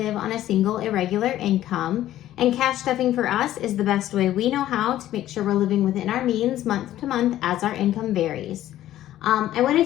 on a single irregular income. And cash stuffing for us is the best way we know how to make sure we're living within our means month to month as our income varies. I want to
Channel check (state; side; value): quieter; right; 13.3 dB